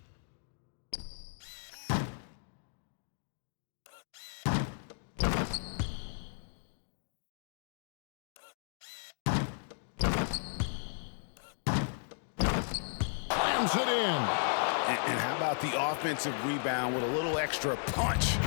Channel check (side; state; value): right; silent; digital silence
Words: Slams it in. And how about the offensive rebound with a little extra punch